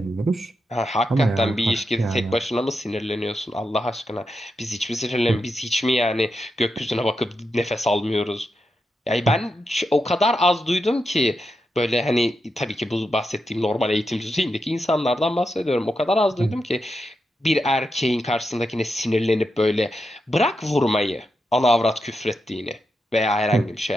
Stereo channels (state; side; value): normal; both; correlation 0.86